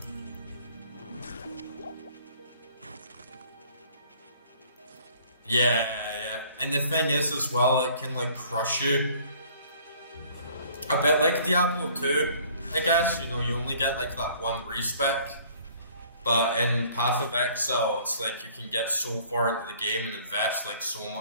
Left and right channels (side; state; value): both; inverted; correlation -0.55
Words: Yeah. And the thing is as well, it can like crush you. A bit like Diablo 2, I guess. You know, you only get like that one respec. But in Path of Exile, it's like you can get so far into the game and invest like so